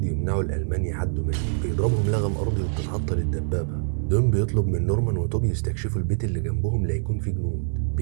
يمنعوا الألمان يعدوا منه. بيضربهم لغم أرضي وبتتعطل الدبابة. دون بيطلب من نورمان وتوب يستكشفوا البيت اللي جنبهم ليكون فيه جنود.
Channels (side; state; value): left; silent; digital silence